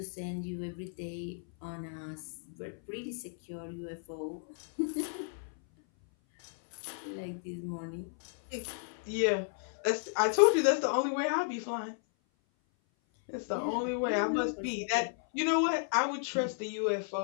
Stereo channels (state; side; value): silent; right; 55 dB below the other